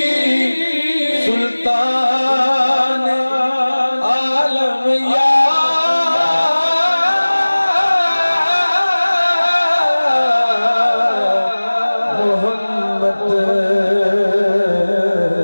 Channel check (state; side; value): inverted; both; correlation -1.00